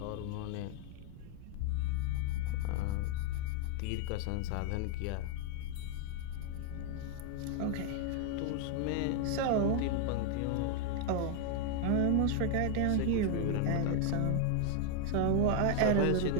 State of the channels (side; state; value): both; different; correlation 0.01